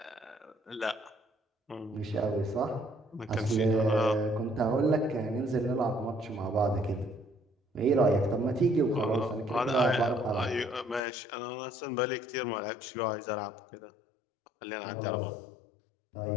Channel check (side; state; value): right; drops out; at 11.0 s